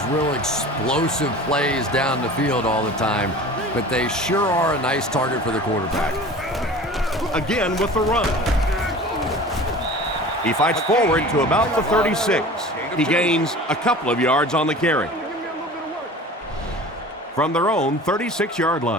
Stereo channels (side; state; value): both; normal; correlation 0.40